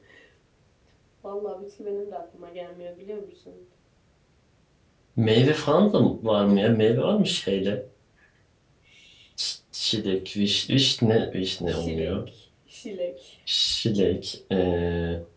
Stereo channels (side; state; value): both; identical; correlation 1.00